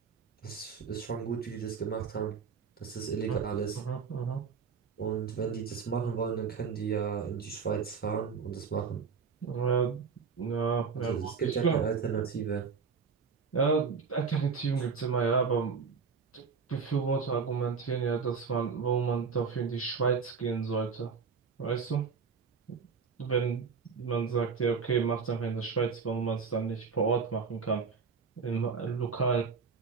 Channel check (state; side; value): quieter; left; 5.5 dB